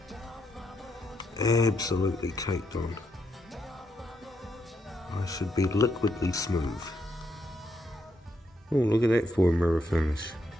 Absolutely caked on. I should be liquidly smooth. Oh, look at that for a mirror finish.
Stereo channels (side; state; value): both; normal; correlation 0.79